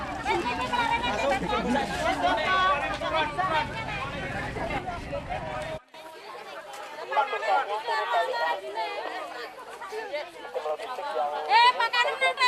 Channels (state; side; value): identical; both; correlation 1.00